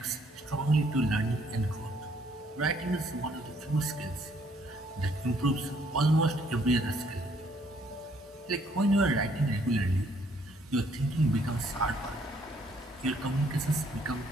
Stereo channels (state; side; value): normal; both; correlation 0.66